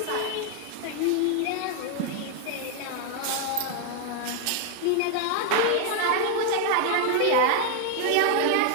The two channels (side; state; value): both; different; correlation 0.01